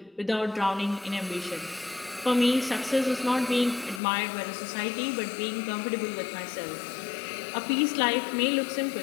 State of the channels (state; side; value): drops out; right; at 4.0 s